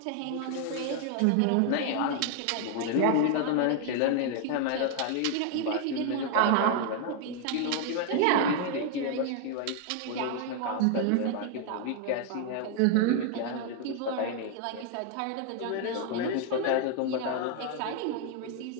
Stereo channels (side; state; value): both; different; correlation 0.00